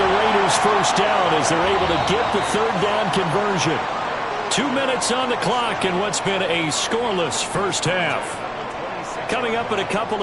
Raiders 1st down as they're able to get the 3rd down conversion. 2 minutes on the clock in what's been a scoreless first half. Coming up in a couple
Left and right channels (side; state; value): both; identical; correlation 1.00